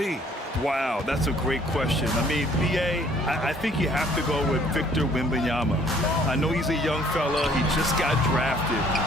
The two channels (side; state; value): both; normal; correlation 0.59